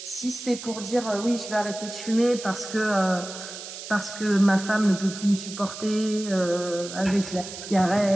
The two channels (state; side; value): noise; right; hiss, 11 dB below the sound